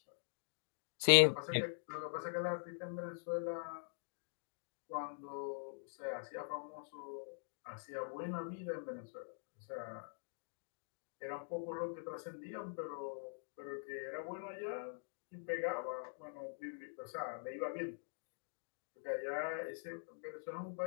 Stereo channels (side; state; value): right; silent; digital silence